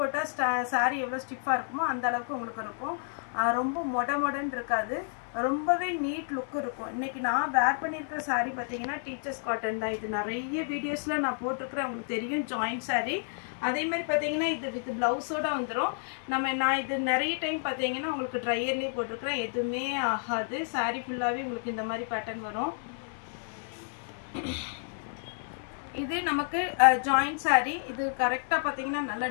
சாரி எவ்வளோ ஸ்டிஃபாக இருக்குமோ அந்த அளவுக்கு உங்களுக்கு இருக்கும். ரொம்ப மொடன்னு இருக்காது, ரொம்பவே நீட் லுக் இருக்கும். இன்னைக்கு நான் வேர் பண்ணியிருக்கிற சாரி பார்த்தீங்கன்னா டீச்சர்ஸ் காட்டன் தான். இது நிறைய வீடியோஸில் நான் போட்டிருக்கிறேன், உங்களுக்கு தெரியும், ஜாயிண்ட் சாரி. அதே மாதிரி பார்த்தீங்கன்னா இது வித் ப்ளவுஸோட வந்துடும். நான் இது நிறைய டைம் பார்த்தீங்கன்னா உங்களுக்கு ட்ரையர்லேயே போட்டிருக்கிறேன், எதுவுமே ஆகாது. சாரி ஃபுல்லாகவே உங்களுக்கு இந்த மாதிரி பேட்டர்ன் வரும். இது நமக்கு ஜாயிண்ட் சாரி. இது கரெக்டா பாத்தீங்கன்னா நல்ல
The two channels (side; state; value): right; silent; 58 dB below the other